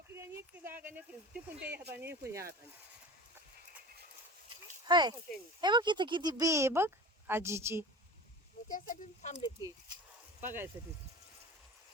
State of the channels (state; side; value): normal; both; correlation 0.34